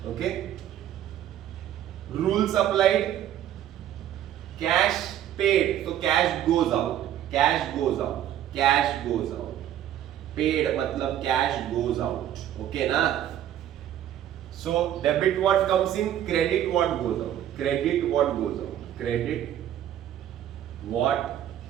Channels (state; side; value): quieter; left; 11.3 dB